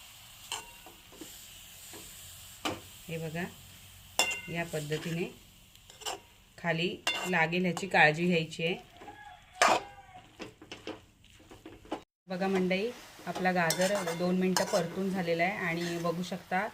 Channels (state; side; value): identical; both; correlation 1.00